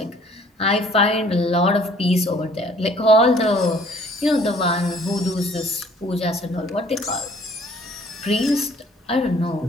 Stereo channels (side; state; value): both; normal; correlation 0.57